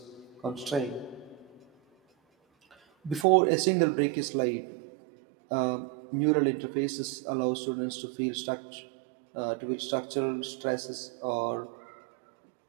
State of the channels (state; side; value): drops out; left; at 3.2 s